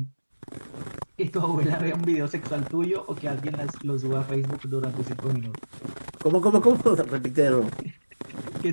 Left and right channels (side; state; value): both; inverted; correlation -1.00